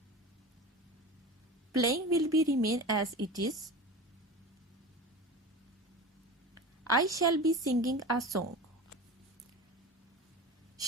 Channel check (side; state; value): both; normal; correlation 0.32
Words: Playing will be remain as it is. I shall be singing a song.